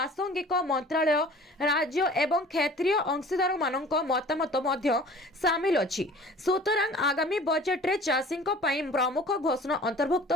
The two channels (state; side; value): normal; both; correlation 0.46